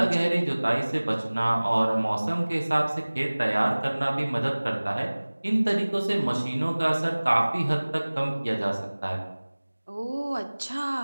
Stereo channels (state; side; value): inverted; both; correlation -1.00